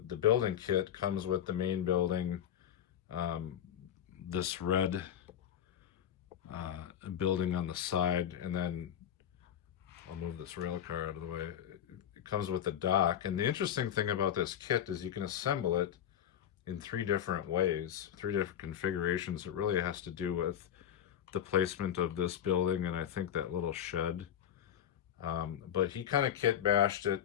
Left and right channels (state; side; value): quieter; right; 9.8 dB